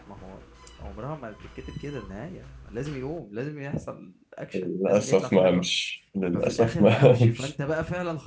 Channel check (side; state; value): both; identical; correlation 1.00